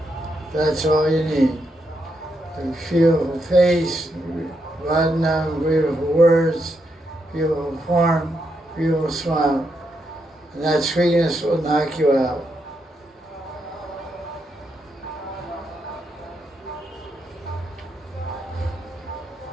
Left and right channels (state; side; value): normal; both; correlation 0.81